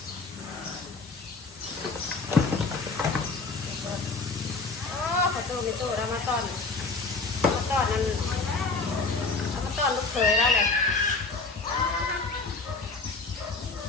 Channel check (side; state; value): right; quieter; 3.9 dB